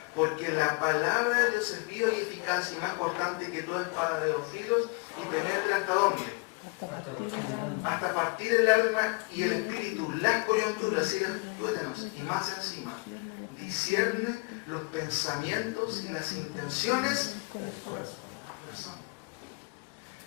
Porque la palabra de Dios es viva y eficaz y más cortante que toda espada de dos filos y penetra hasta dónde. Hasta partir el alma y el espíritu, las coyunturas y los tuétanos, y más encima, discierne los pensamientos y las intenciones del corazón.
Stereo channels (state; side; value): quieter; right; 30.7 dB